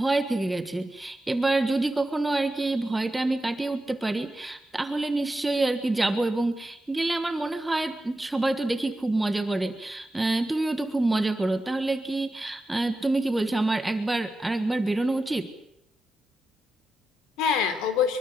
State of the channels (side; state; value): both; normal; correlation 0.90